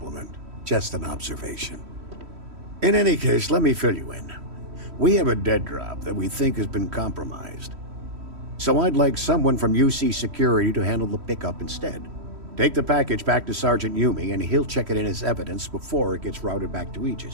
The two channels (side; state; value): left; late; 3.1 ms